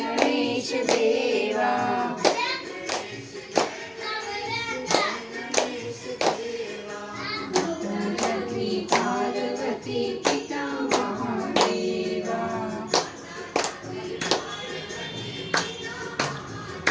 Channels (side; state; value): both; identical; correlation 1.00